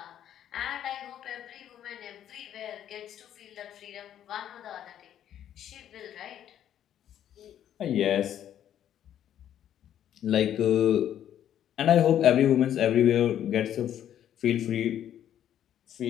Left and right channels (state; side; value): quieter; right; 10.6 dB